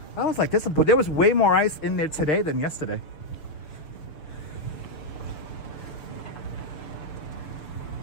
I was like, there was way more ice in there today than yesterday.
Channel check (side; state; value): right; late; 6.9 ms